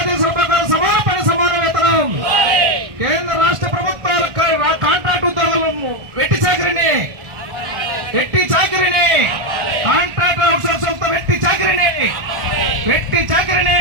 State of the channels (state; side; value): late; left; 1.3 ms